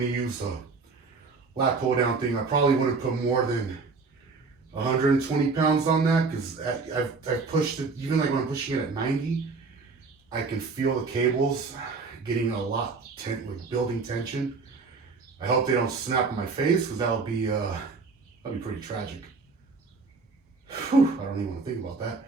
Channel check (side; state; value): left; quieter; 4.4 dB